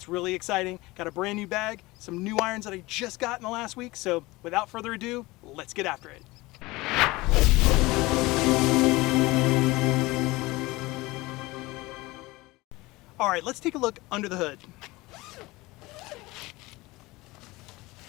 really exciting. Got a brand new bag, some new irons that I just got in the last week, so without further ado, let's get after it. Alright, let's take a look under the hood.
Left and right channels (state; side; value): quieter; right; 21.3 dB